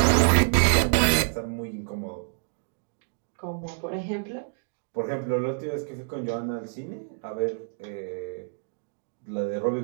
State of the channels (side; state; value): left; silent; digital silence